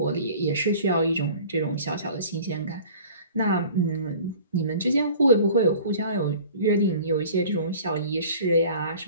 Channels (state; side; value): inverted; both; correlation -0.46